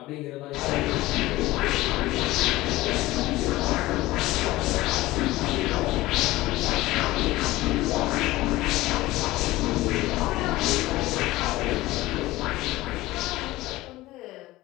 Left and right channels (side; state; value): right; quieter; 18.1 dB